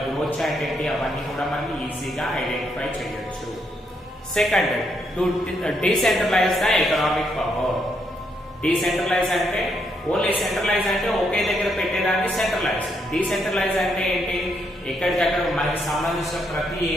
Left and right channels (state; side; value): normal; both; correlation 0.77